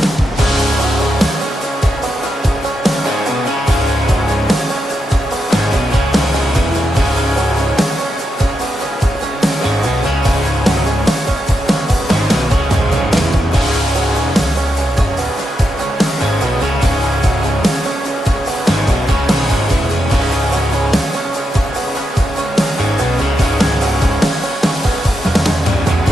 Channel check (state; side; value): normal; both; correlation 0.85